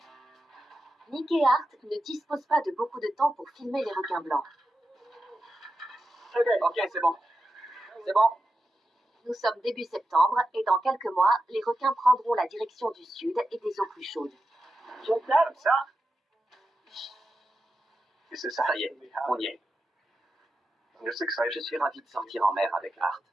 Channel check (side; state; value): both; normal; correlation 0.90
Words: Nick et Art ne disposent pas de beaucoup de temps pour filmer les requins blancs. Ok, c'est bon. C'est bon. Nous sommes début septembre et dans quelques mois, les requins prendront la direction du sud et des eaux plus chaudes. Comme ça. Ça y est, on y est. Je suis ravi de sortir en mer avec Art.